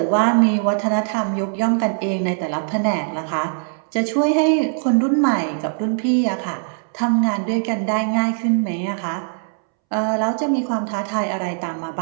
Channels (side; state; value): left; silent; 65 dB below the other